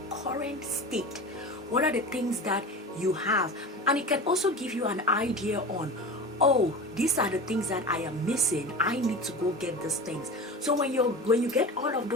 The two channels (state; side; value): normal; both; correlation 0.31